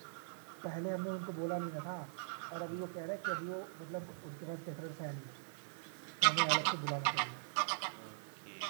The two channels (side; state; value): left; silent; 50 dB below the other